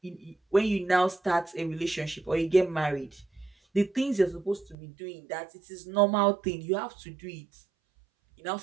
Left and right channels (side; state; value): left; drops out; at 4.8 s